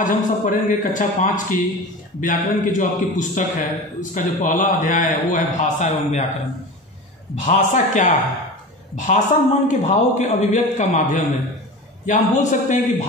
हम सब पढ़ेंगे कक्षा 5 की व्याकरण की जो आपकी पुस्तक है, उसका जो पहला अध्याय है वो है भाषा एवं व्याकरण। भाषा क्या है? भाषा मन के भावों के अभिव्यक्त का माध्यम है, या हम बोल सकते हैं कि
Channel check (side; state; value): both; normal; correlation 0.32